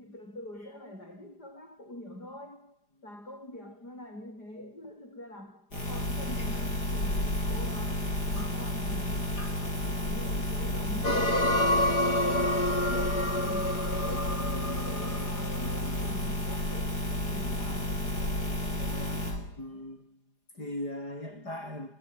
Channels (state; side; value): late; right; 4.9 ms